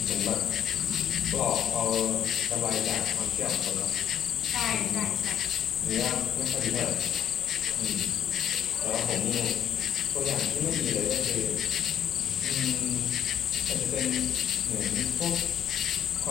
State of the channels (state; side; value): quieter; right; 9.8 dB